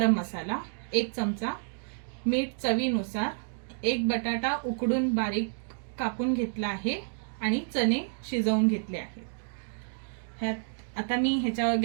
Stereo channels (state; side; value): silent; left; digital silence